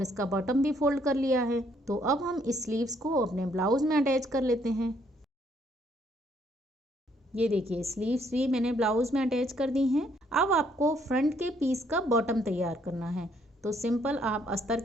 इसका बॉटम भी फोल्ड कर लिया है। तो अब हम इस स्लीव्स को अपने ब्लाउज में अटैच कर लेते हैं। ये देखिए स्लीव्स भी मैंने ब्लाउज में अटैच कर दी हैं। अब आपको फ्रंट के पीस का बॉटम तैयार करना है। तो सिंपल आप अस्तर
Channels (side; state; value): both; normal; correlation 0.68